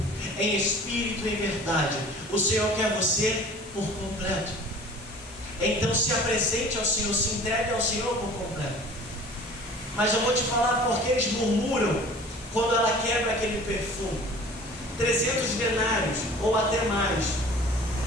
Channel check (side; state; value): both; normal; correlation 0.45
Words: Em espírito e em verdade. O Senhor quer você por completo. Então se apresente ao Senhor, se entregue ao Senhor por completo. Mas eu vou te falar porque eles murmuram quando ela quebra aquele perfume. 300 denários ou até mais.